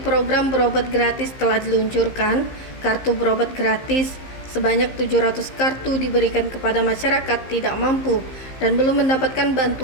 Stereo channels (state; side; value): late; right; 15 ms